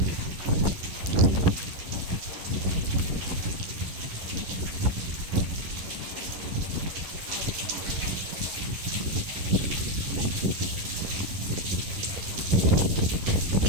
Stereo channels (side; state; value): left; late; 11 ms